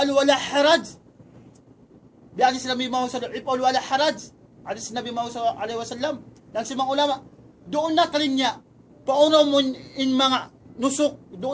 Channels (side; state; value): both; identical; correlation 1.00